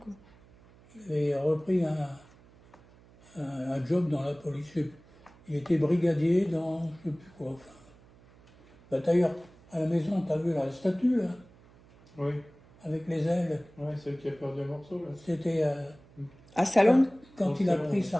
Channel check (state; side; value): noise; right; hum, 26 dB below the sound